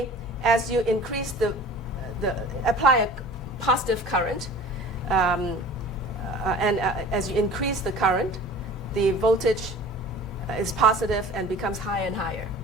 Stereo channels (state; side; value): normal; both; correlation 0.42